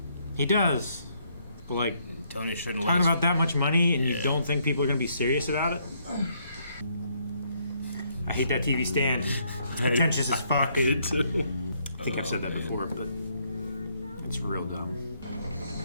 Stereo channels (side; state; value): both; inverted; correlation -0.71